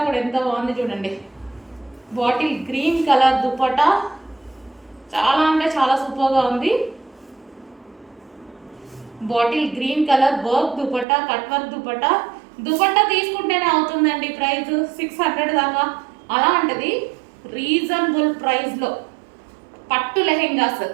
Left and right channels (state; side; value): drops out; left; at 11.1 s